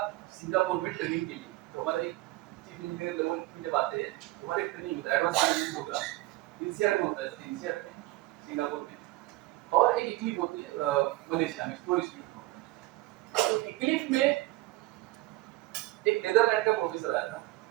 सिंगापुर में ट्रेनिंग के लिए, तो हमारे चीफ इंजीनियर लेवल की जब आते हैं तो हमारे ट्रेनिंग होता है, एडवांस ट्रेनिंग प्रोग्राम इंसियाड में होता है, जैसे इंसियाड में सिंगापुर में, और एक इक्लिप होती है मलेशिया में, टूरिस्ट में होता है। तो इक्लिप में एक नेदरलैंड का प्रोफेसर आया था।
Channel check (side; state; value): left; quieter; 19.1 dB